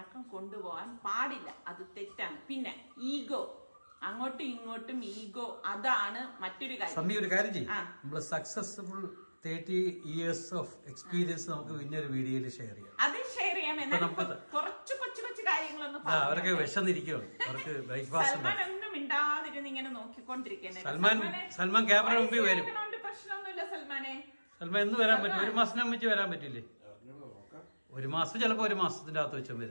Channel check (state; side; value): inverted; both; correlation -1.00